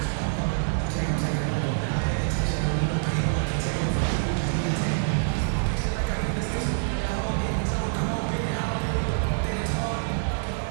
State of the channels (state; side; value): silent; left; digital silence